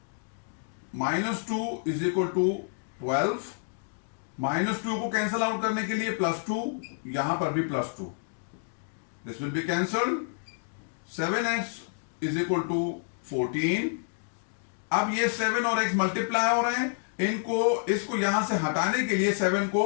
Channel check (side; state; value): right; silent; digital silence